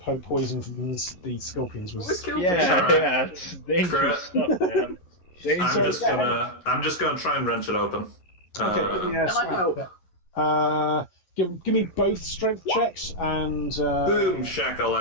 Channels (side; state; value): right; late; 11 ms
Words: poison from the scorpions was. Yeah, it's dangerous stuff, man. I'm just gonna try and wrench it open. Okay, Can I help? Give me both strength checks and Boom